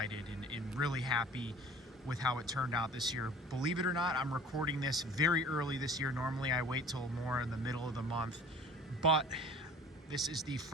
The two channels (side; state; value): both; normal; correlation 0.46